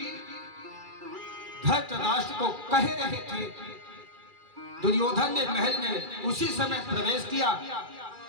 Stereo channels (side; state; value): left; late; 2.3 ms